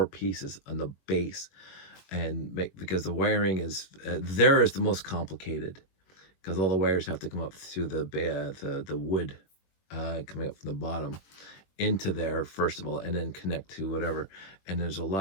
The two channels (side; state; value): right; late; 21 ms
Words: pieces on the base. And because the wiring is there is the most complicated, because all the wires have to come up through the wood coming up from the bottom into there first of all, and then connect to whatever. And there's a